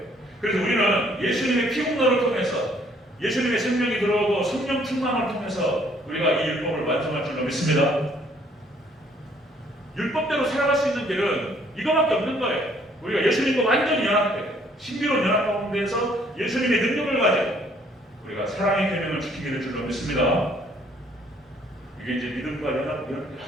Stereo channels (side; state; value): both; normal; correlation 0.63